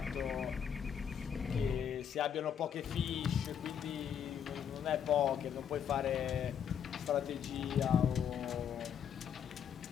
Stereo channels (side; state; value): right; quieter; 8.2 dB